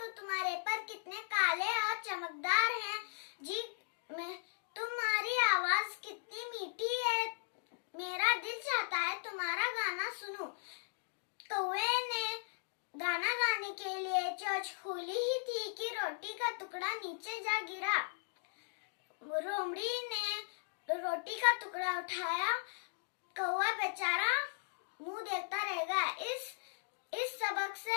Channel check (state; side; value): silent; right; digital silence